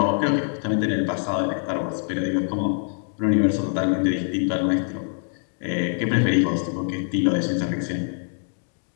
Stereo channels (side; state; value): right; silent; 60 dB below the other